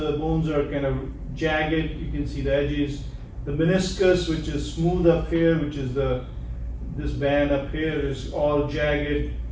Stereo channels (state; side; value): identical; both; correlation 1.00